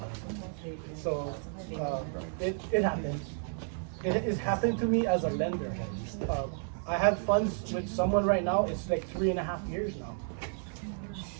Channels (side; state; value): left; silent; 56 dB below the other